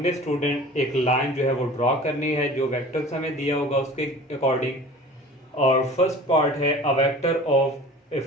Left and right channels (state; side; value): normal; both; correlation 0.42